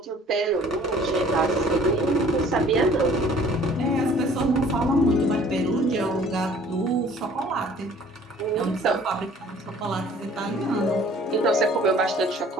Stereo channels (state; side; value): normal; both; correlation 0.53